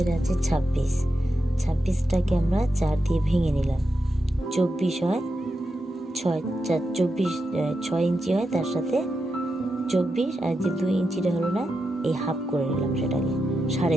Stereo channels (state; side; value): normal; both; correlation 0.87